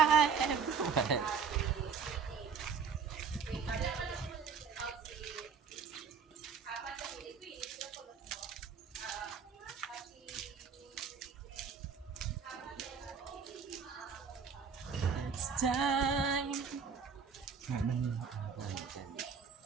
everyone. It's time.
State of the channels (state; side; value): quieter; left; 6.0 dB